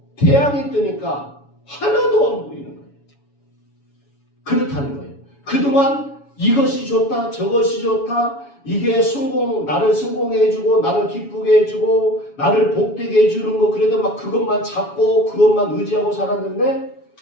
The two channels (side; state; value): right; late; 7.1 ms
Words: 태양이 뜨니까 하나도 안 보이는 거예요. 그렇다는 거예요. 그동안 이것이 좋다, 저것이 좋다, 이게 나를 성공해주고, 나를 기쁘게 해주고, 나를 복되게 해주는 거, 그래도 막 그것만 잡고, 그것만 의지하고 살았는데,